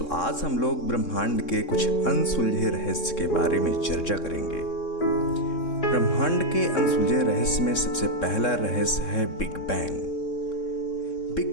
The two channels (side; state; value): right; late; 3.7 ms